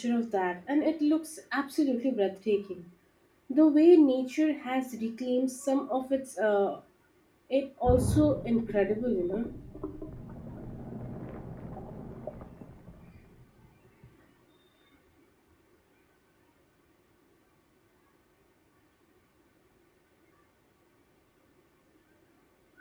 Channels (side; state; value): both; identical; correlation 1.00